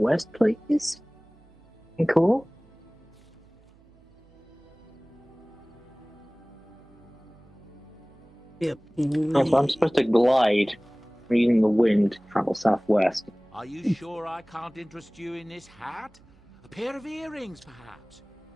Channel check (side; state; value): right; noise; hum, 28 dB below the sound